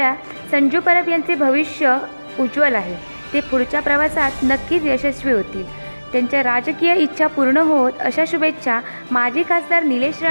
संजू परब यांचे भविष्य उज्ज्वल आहे। ते पुढच्या प्रवासात नक्कीच यशस्वी होतील। त्यांच्या राजकीय इच्छा पूर्ण होत अशा शुभेच्छा माजी खासदार निलेश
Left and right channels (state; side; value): inverted; both; correlation -1.00